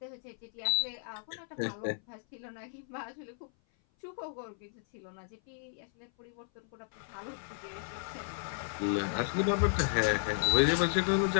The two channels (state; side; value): silent; right; 55 dB below the other